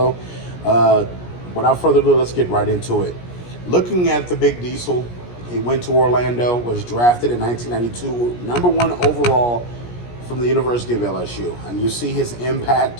Without further ado, let's get right into it. Looking at the Big Diesel, he went to Orlando, was drafted in 1992, number one overall from the University of LSU. And you see his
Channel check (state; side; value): late; right; 17 ms